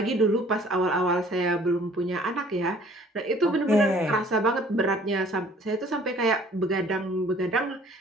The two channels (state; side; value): normal; both; correlation 0.54